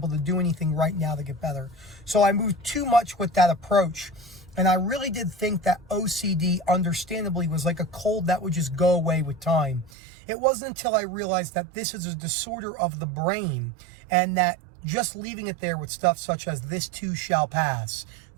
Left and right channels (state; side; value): drops out; left; at 9.9 s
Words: to do anything right now to get better. So I moved too much with that approach. And I really did think that OCD, understandably, was like a cold that would just go away with time. It wasn't until I realized that this is a disorder of the brain and that just leaving it there with stuff such as this too shall pass,